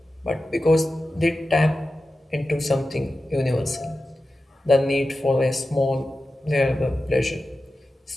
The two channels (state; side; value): normal; both; correlation 0.93